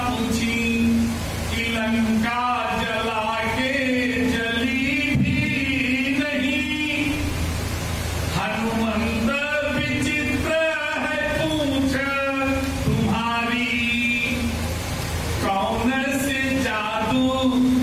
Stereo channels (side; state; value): both; identical; correlation 1.00